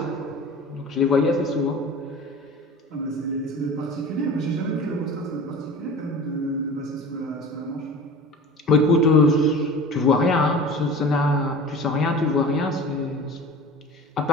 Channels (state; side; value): normal; both; correlation 0.38